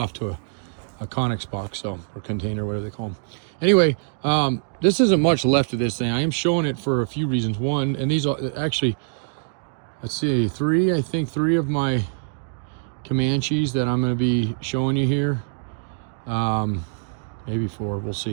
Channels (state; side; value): silent; left; digital silence